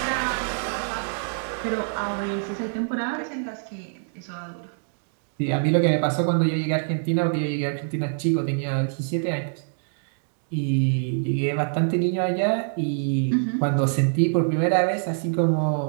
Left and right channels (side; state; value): left; silent; digital silence